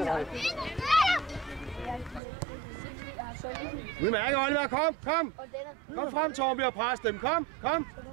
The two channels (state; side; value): drops out; left; at 2.2 s